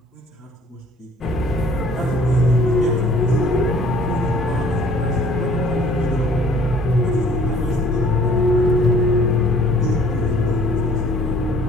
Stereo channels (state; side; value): normal; both; correlation 0.54